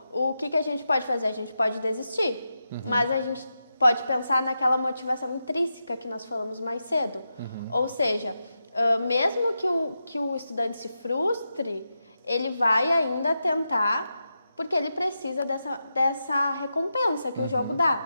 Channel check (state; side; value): inverted; both; correlation -0.88